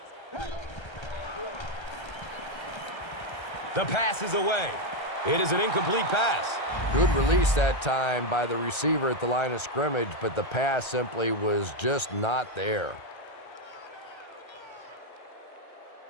The pass is away. It is an incomplete pass. Good release that time by the receiver at the line of scrimmage, but the pass simply was just not there.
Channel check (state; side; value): late; right; 1.3 ms